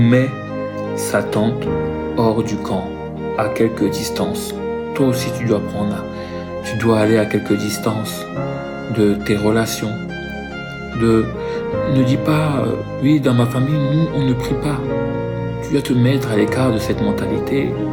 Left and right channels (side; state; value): both; identical; correlation 1.00